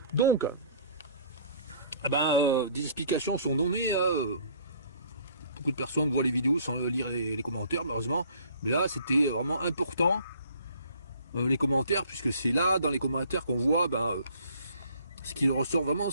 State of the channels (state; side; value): inverted; both; correlation -0.56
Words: Donc, des explications sont données. Beaucoup de personnes voient les vidéos sans lire les commentaires, malheureusement. Mais là, c'était vraiment important, les commentaires, puisque c'est là, dans les commentaires, qu'on voit ce qui ressort vraiment de